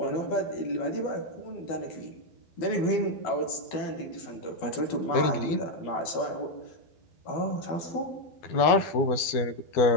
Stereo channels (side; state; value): right; late; 12 ms